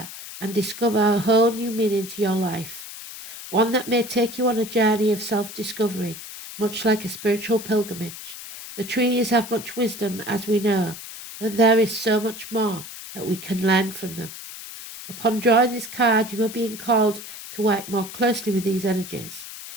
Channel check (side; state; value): left; noise; hiss, 12 dB below the sound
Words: and discover a whole new meaning to your life. One that may take you on a journey of self-discovery, much like a spiritual pilgrimage. The trees have much wisdom, as we know, but there is so much more that we can learn from them. Upon drawing this card, you are being called to work more closely with these energies.